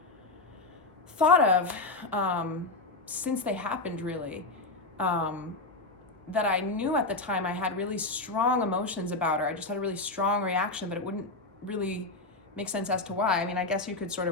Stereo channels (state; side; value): quieter; right; 3.3 dB